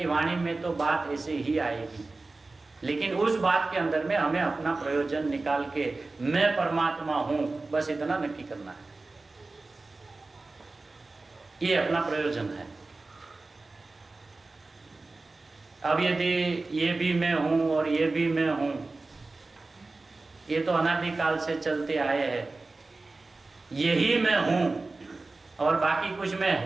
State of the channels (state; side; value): quieter; left; 3.4 dB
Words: वाणी में तो बात ऐसे ही आएगी, लेकिन उस बात के अंदर में हमें अपना प्रयोजन निकाल के मैं परमात्मा हूं, बस इतना नक्की करना है। ये अपना प्रयोजन है। अब यदि ये भी मैं हूं और ये भी मैं हूं, ये तो अनादिकाल से चलते आए हैं। यही मैं हूं और बाकी कुछ मैं